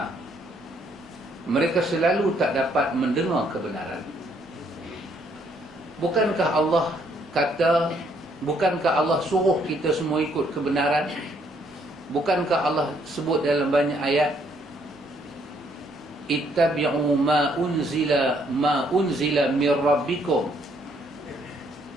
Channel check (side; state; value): both; normal; correlation 0.69